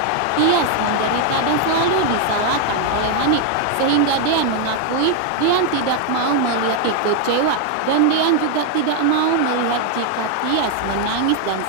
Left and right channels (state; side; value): different; both; correlation 0.00